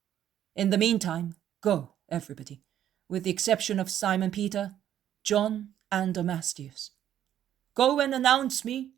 In the meantime, go, everybody, with the exception of Simon Peter, John, and Amastius. Go and announce me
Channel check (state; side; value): quieter; left; 10.9 dB